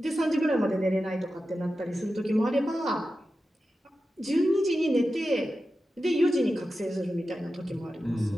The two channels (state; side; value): normal; both; correlation 0.92